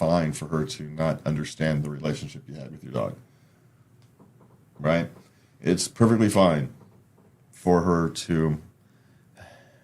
for her to not understand the relationship you had with your dog. Right? It's perfectly fine for her to...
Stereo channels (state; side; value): identical; both; correlation 1.00